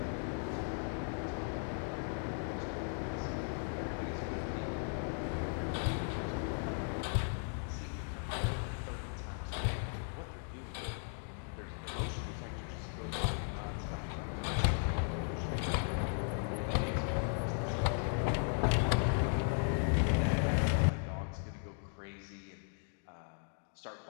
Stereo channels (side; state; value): right; silent; 53 dB below the other